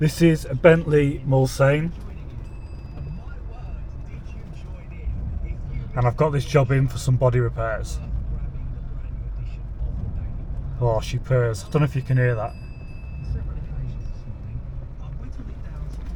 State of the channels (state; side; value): identical; both; correlation 1.00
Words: is a Bentley Mulsanne, and I've got this job in for some body repairs. Oh, she purrs. I don't know if you can hear that.